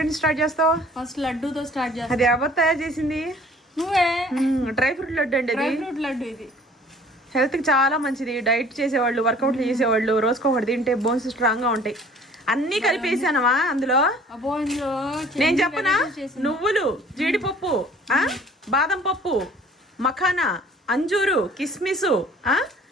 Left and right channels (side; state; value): both; normal; correlation 0.53